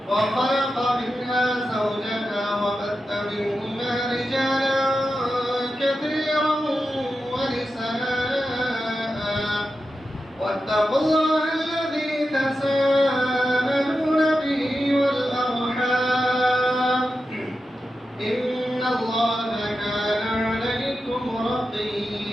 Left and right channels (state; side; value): normal; both; correlation 0.90